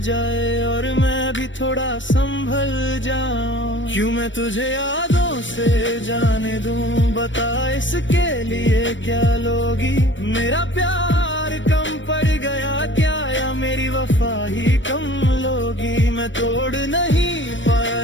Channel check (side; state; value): right; late; 0.55 ms